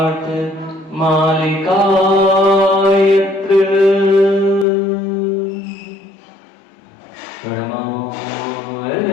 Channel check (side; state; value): right; drops out; at 4.7 s